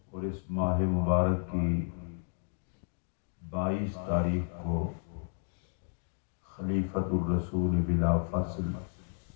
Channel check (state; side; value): silent; right; 56 dB below the other